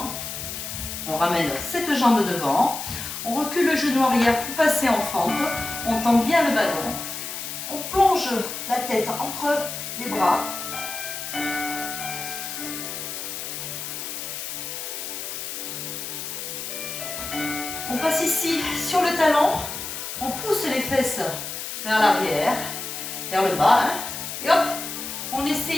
On ramène cette jambe devant. On recule le genou arrière pour passer en fente. On tend bien le ballon. On plonge la tête entre les bras. On passe ici sur le talon, on pousse les fesses vers l'arrière, vers le bas, hein, et hop, on essaie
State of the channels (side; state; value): left; noise; hiss, 6 dB below the sound